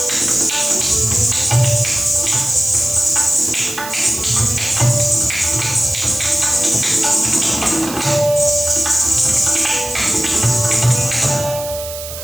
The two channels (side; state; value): right; noise; hiss, 10 dB below the sound